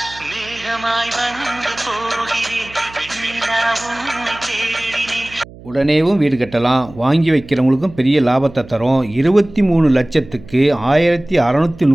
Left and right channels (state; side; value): noise; right; hum, 19 dB below the sound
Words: உடனேவும் வீடு கட்டலாம். வாங்கி வைக்கிறவங்களுக்கும் பெரிய லாபத்தை தரும். 23 லட்சத்துக்கு